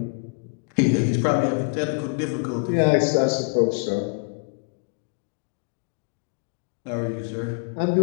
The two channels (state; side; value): quieter; right; 34.3 dB